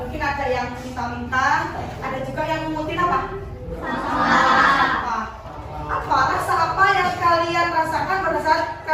mungkin ada yang minta-minta, ada juga yang mengutin apa? Apa rasa apa yang kalian rasakan pada saat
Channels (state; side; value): identical; both; correlation 1.00